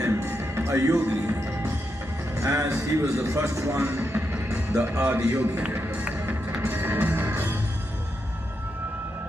a yogi, as he was the first one, the Adiyogi.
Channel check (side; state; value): both; normal; correlation 0.84